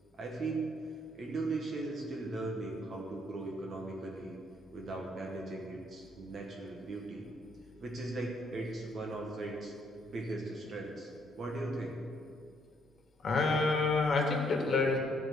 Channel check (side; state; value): both; normal; correlation 0.69